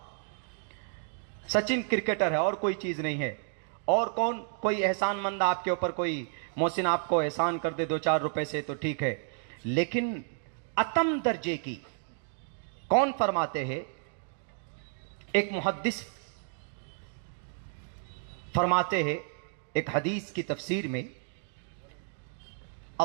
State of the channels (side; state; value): left; silent; digital silence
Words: सचिन क्रिकेटर है और कोई चीज नहीं है। और कौन कोई एहसानमंद आपके ऊपर, कोई मोहसिन आपको एहसान कर दे 2-4 रुपए से तो ठीक है, लेकिन अतम दर्जे की कौन फरमाते हैं? एक मुहद्दिस फरमाते हैं एक हदीस की तफसीर में,